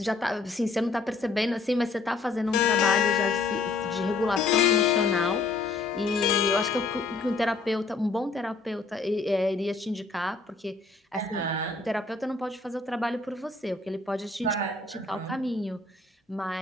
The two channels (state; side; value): quieter; right; 3.8 dB